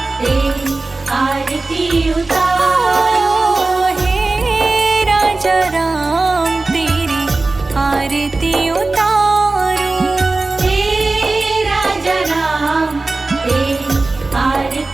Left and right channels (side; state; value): left; quieter; 3.4 dB